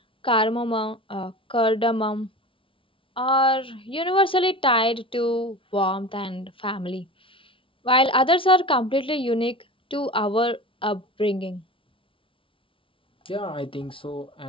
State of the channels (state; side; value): late; right; 0.25 ms